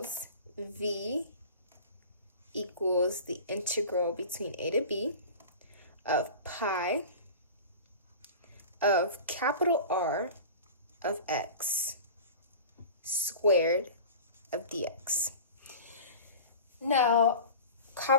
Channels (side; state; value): both; inverted; correlation -0.37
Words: V equals the integral between a to b of pi of capital R of x squared of dx. Now,